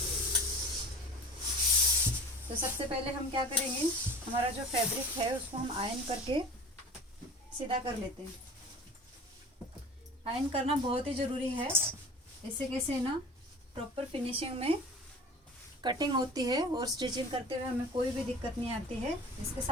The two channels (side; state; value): both; normal; correlation 0.39